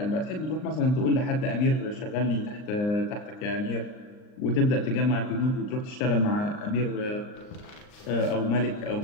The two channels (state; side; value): late; right; 39 ms